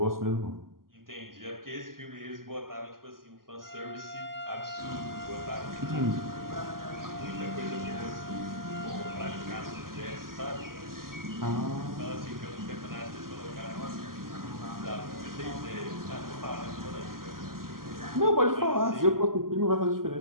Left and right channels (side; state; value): left; late; 0.91 ms